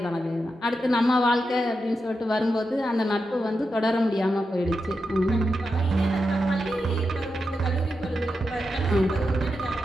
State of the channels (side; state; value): both; normal; correlation 0.88